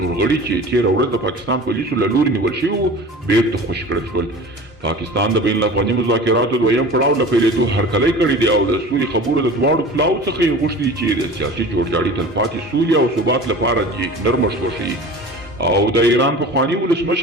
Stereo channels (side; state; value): both; normal; correlation 0.38